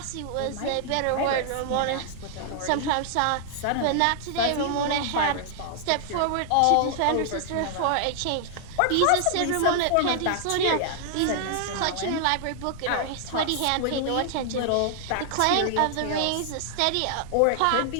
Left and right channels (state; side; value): different; both; correlation 0.00